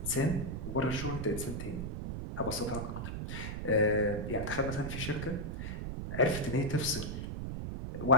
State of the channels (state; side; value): noise; right; rumble, 4 dB below the sound